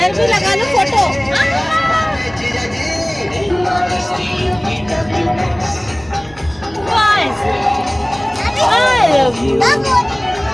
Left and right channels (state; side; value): noise; right; hum, 25 dB below the sound